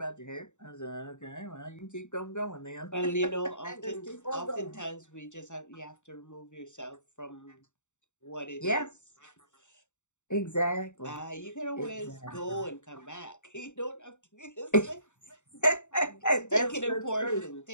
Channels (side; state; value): right; late; 0.84 ms